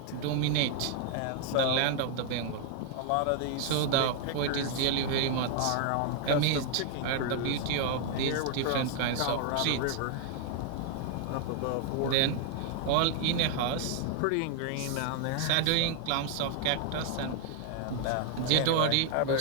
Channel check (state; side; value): different; both; correlation 0.00